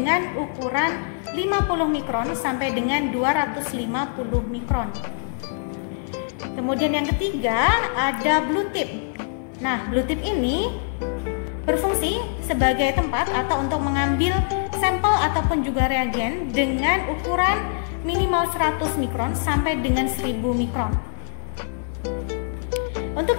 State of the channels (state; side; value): silent; right; digital silence